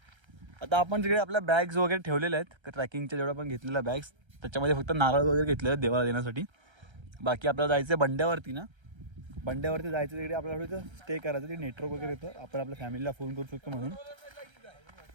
आता आपण तिकडे आपल्या बॅग्स वगैरे ठेवलेल्या आहेत ट्रॅकिंगच्या, जेवढ्या पण घेतलेल्या बॅग्स, त्याच्यामध्ये फक्त नारळ वगैरे घेतले आहेत देवाला देण्यासाठी. बाकी आपल्याला जायचं आहे बंड्यावरती ना. बंड्यावरती जायचं तिकडे आपल्याला थोडं स्टे करायचं. ते नेटवर्क वगैरे येतं, आपण आपल्या फॅमिलीला फोन करू शकतो म्हणून.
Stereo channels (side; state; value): left; late; 1.3 ms